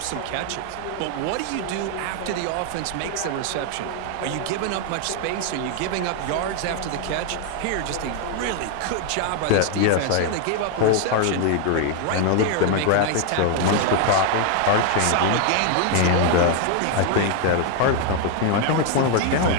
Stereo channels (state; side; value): different; both; correlation 0.00